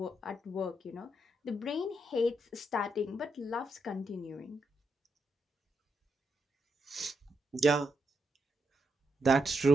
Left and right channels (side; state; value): both; normal; correlation 0.82